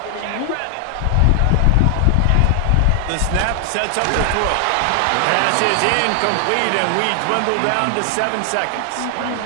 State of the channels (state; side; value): different; both; correlation 0.00